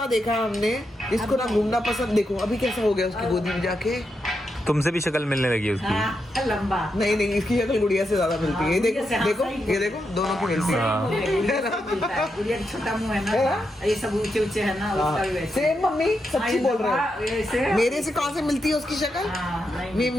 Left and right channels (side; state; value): both; normal; correlation 0.85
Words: देखा हमने, इसको ना घूमना पसंद। देखो अभी कैसा हो गया उसकी गोदी में जाके। तुमसे भी शक्ल मिलने लगी है उसकी। हाँ, लंबा नहीं नहीं, इसकी शक्ल गुड़िया से ज्यादा मिलती है। ये देखो देखो ये देखो, दोनों की मिलती है। गुड़िया का छोटा मुंह है ना, ये सब ऊंचे ऊंचे है ना, उसका भी वैसे। सेम मम्मी सच्ची बोल रहे हैं। ऐसे मेरे से कहाँ से मिलती है उसकी शक्ल?